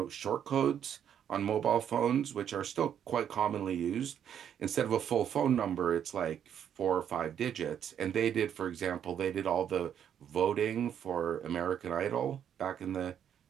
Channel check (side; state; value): left; quieter; 9.0 dB